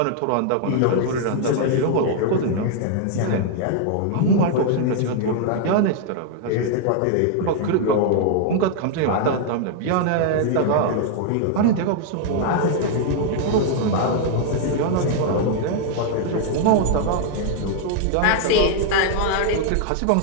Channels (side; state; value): both; different; correlation 0.00